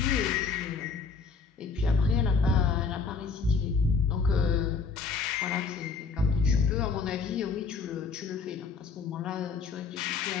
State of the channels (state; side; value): quieter; right; 4.9 dB